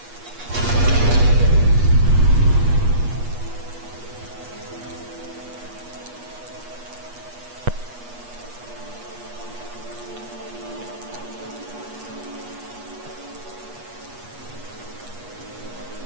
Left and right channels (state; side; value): late; left; 8.3 ms